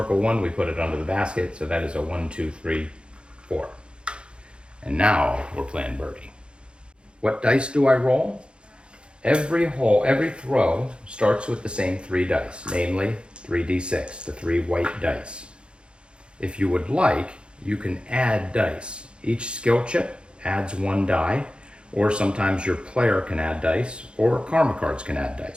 1, we put it under the basket. So that is a 1, 2, 3, 4. And now we're playing birdie. What dice do I roll? Every hole, every throw starts with the same 3 dice, namely 3d6, the 3 white dice. If you would like, you can add dice. Each skill chip adds 1 die, or sometimes your player can add dice, or karma cards can add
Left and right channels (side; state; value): left; late; 0.055 ms